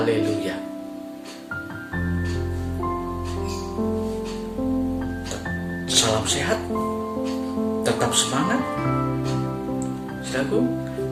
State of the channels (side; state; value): both; identical; correlation 1.00